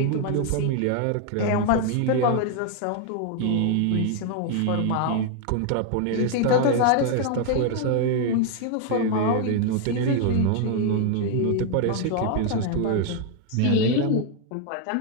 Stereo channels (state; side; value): different; both; correlation 0.00